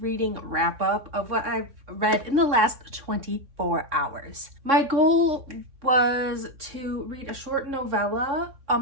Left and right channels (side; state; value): left; late; 3.6 ms